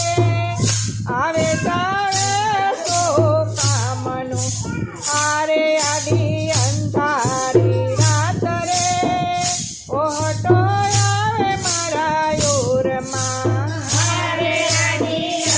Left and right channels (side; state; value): both; identical; correlation 1.00